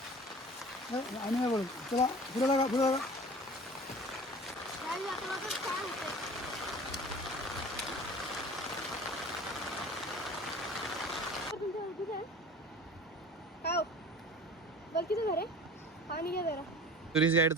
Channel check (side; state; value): both; normal; correlation 0.41